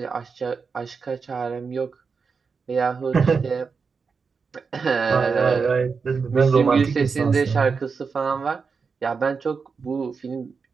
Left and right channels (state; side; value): quieter; left; 5.2 dB